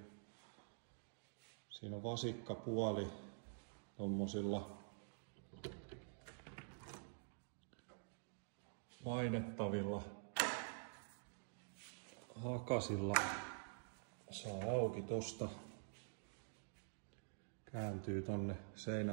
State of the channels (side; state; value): left; silent; digital silence